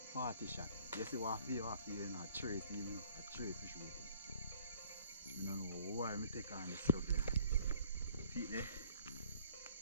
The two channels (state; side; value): inverted; both; correlation -0.56